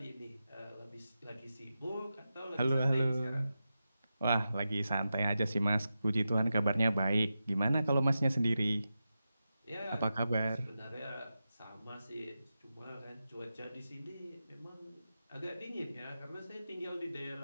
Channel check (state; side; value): inverted; both; correlation -0.91